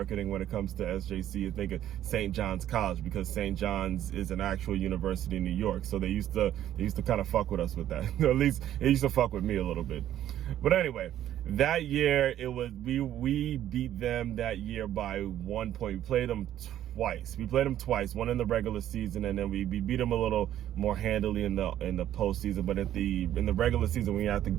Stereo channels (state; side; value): quieter; left; 11.8 dB